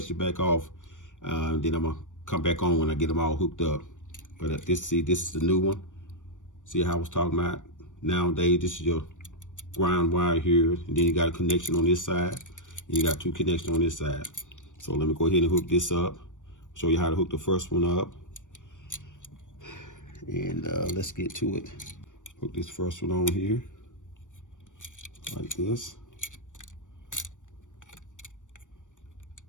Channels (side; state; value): right; late; 0.86 ms